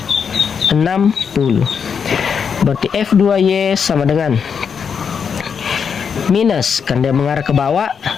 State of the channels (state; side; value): quieter; right; 6.6 dB